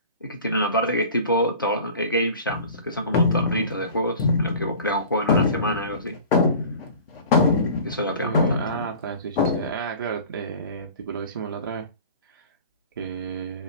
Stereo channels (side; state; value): both; inverted; correlation -0.41